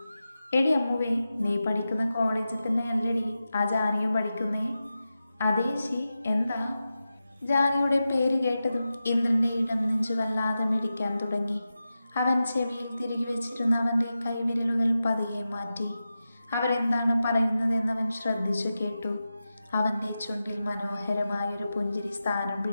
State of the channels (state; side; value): inverted; both; correlation -0.92